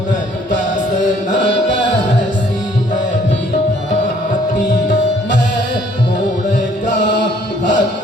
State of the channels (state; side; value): normal; both; correlation 0.61